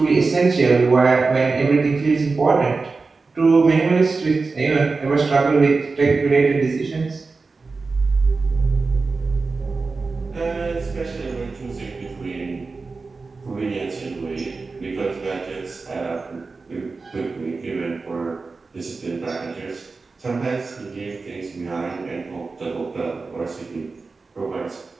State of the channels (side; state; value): left; quieter; 4.1 dB